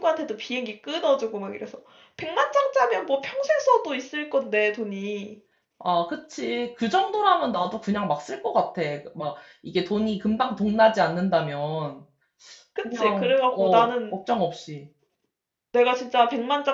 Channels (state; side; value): identical; both; correlation 1.00